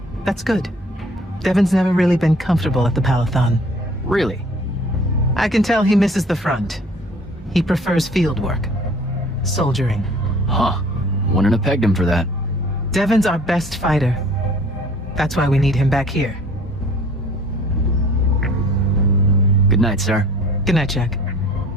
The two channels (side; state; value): both; normal; correlation 0.51